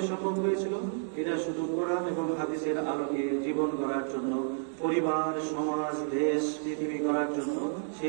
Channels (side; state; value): left; silent; digital silence